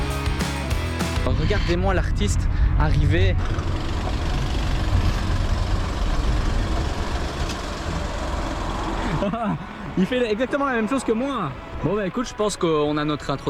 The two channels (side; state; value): both; identical; correlation 1.00